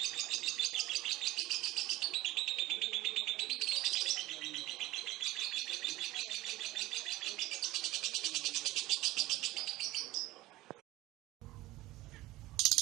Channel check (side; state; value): left; quieter; 18.0 dB